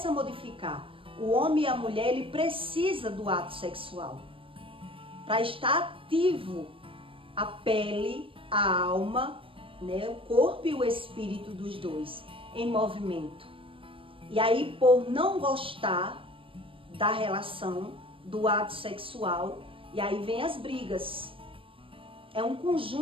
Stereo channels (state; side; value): late; left; 0.26 ms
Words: a modificar. O homem e a mulher, ele precisa do ato sexual para estar ativo a pele, a alma, né, o corpo e o espírito dos dois em movimento. E aí, por não gostar da relação, do ato sexual, e aí vem as brigas. É um